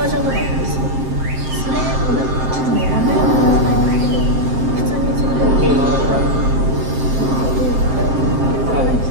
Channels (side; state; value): left; late; 7.6 ms